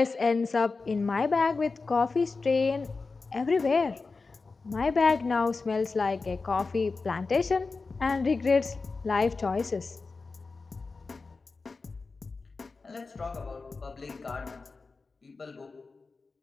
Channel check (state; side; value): quieter; right; 4.1 dB